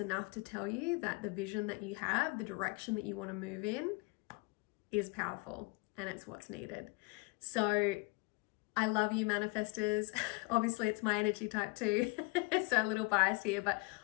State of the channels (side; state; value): right; quieter; 28.2 dB